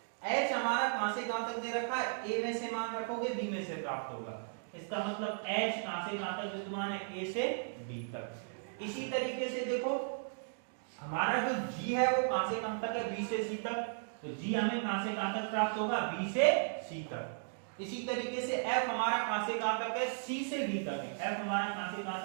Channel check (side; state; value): left; silent; digital silence